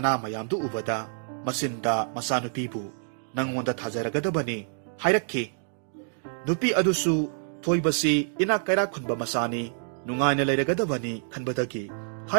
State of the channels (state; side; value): silent; left; digital silence